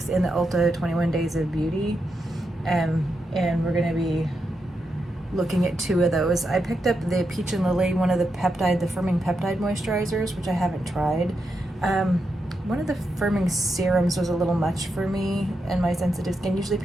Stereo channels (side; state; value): both; normal; correlation 0.85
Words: in the Ulta 21 Days of Beauty, and we're gonna be looking at two of those. I picked up the Peach and Lily, one of the firming peptide moisturizers, which I haven't tried. One of the firming serums was a little much for me and my sensitive skin. Usually